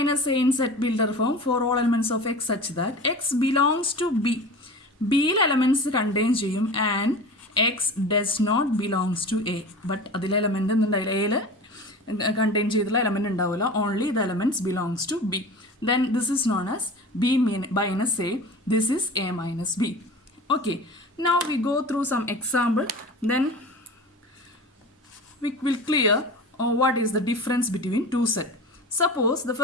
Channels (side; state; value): both; normal; correlation 0.35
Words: A in set builder form for all elements of X such that X belongs to B. B elements contain ചെയ്യും and X does not belongs to A. But അതിലെ element എന്തുണ്ടായില്ല, Aയിൽ contain ചെയ്തുള്ള element ഉണ്ടാവില്ല. Only the elements belongs to B. Then this is known as B minus A. This is A minus B. Okay, now we go through some example. Then we will clear what is the difference between two sets. Suppose the